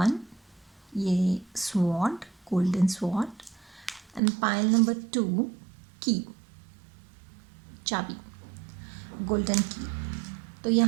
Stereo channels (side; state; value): left; drops out; at 4.2 s